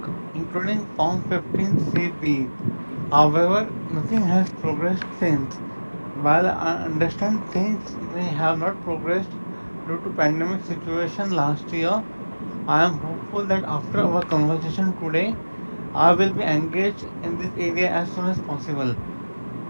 including Form 15CB. However, nothing has progressed since. While I understand things may have not progressed due to pandemic situation last year, I am hopeful that after our conversation today, I will be engaged in this area as soon as possible.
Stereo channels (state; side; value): inverted; both; correlation -1.00